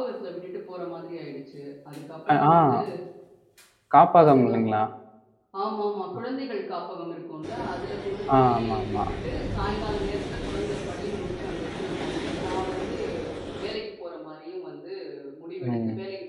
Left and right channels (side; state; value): both; identical; correlation 1.00